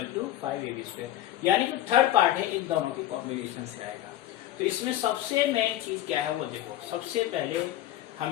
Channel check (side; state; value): right; quieter; 13.3 dB